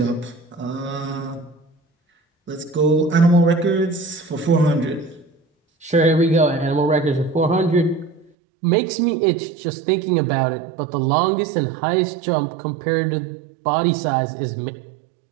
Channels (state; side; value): drops out; left; at 8.3 s